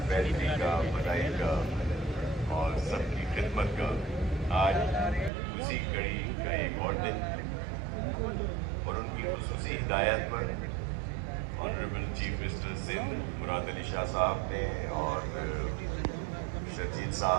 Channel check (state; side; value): drops out; left; at 5.3 s